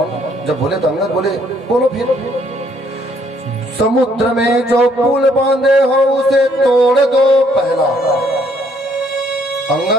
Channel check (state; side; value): normal; both; correlation 0.67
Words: जब बोले तो अंगद बोले, बोलो फिर। समुद्र में जो पुल बांधे हो उसे तोड़ दो पहला।